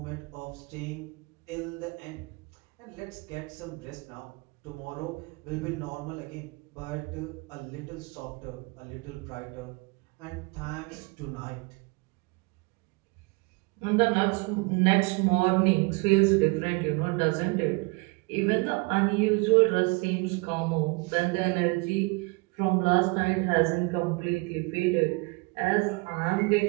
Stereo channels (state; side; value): quieter; left; 27.9 dB